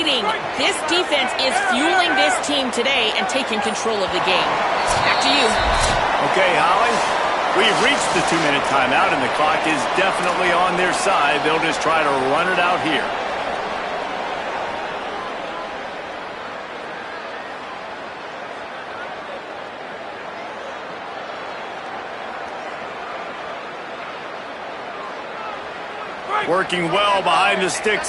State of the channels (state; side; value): identical; both; correlation 1.00